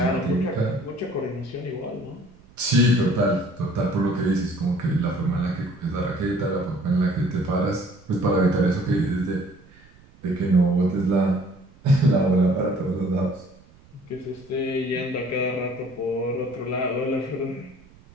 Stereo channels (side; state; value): right; noise; rumble, 27 dB below the sound